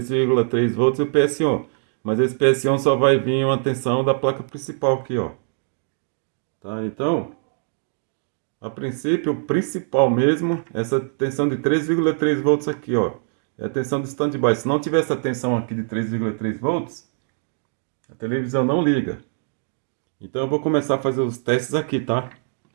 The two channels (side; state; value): left; silent; digital silence